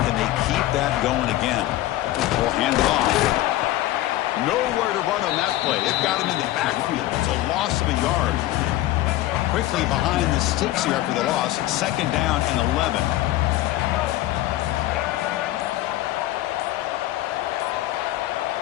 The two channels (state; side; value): quieter; right; 15.5 dB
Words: they keep that going again? We'll hand it off. Nowhere to run on that play. They've got him in the backfield. It's a loss of a yard. Quickly behind the sticks here after the loss. 2nd down and 11.